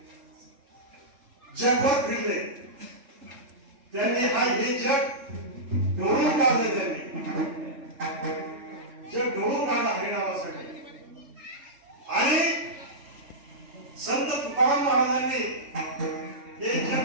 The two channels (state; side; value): late; left; 3.4 ms